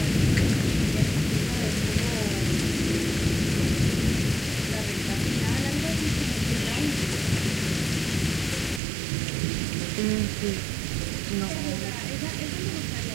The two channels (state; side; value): drops out; left; at 8.8 s